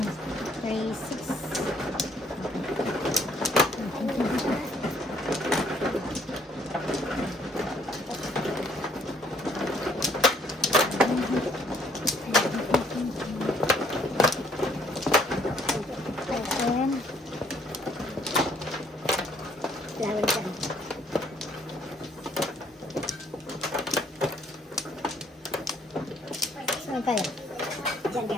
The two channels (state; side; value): normal; both; correlation 0.64